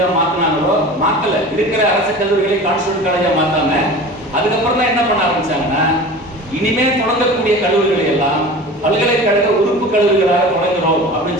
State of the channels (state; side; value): normal; both; correlation 0.37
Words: மாத்தினாங்களோ, மாத்தல, இருக்கிற அரசு கல்லூரிகளை கான்ஸ்டிடியூஷன் காலேஜா மாத்தாம அதுக்கப்புறம் தான் என்ன பண்ண ஆரம்பிச்சாங்கன்னா, இனிமே தொடங்கக்கூடிய கல்லூரிகளை எல்லாம் பல்கலைக்கழக உறுப்பு கல்லூரிகளாக தொடங்குறோம்